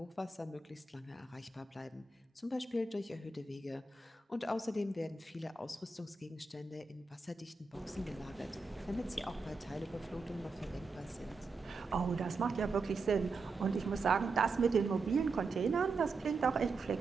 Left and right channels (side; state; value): left; quieter; 3.9 dB